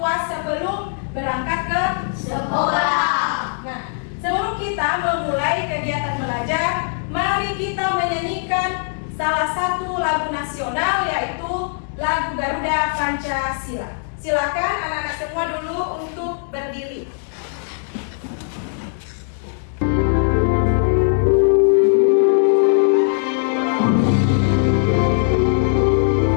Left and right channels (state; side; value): silent; right; digital silence